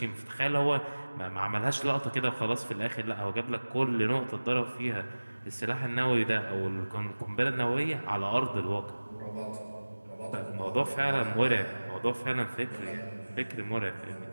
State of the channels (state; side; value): inverted; both; correlation -1.00